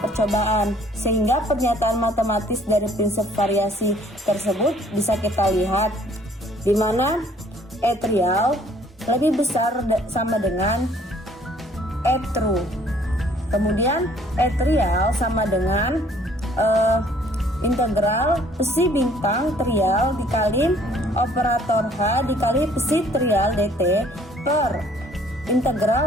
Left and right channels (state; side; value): normal; both; correlation 0.59